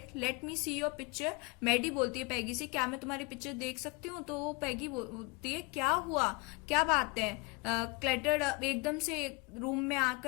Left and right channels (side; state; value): right; quieter; 27.5 dB